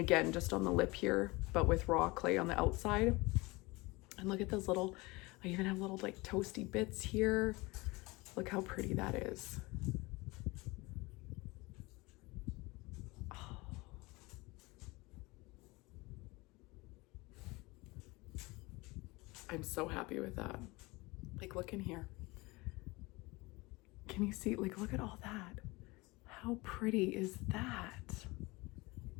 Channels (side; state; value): right; quieter; 23.4 dB